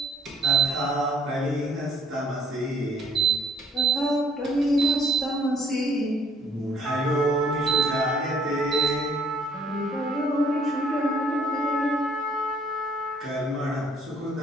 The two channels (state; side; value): normal; both; correlation 0.62